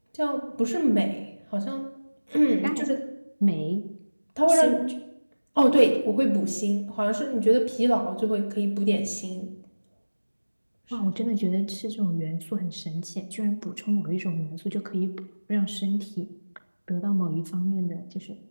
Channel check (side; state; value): both; inverted; correlation -1.00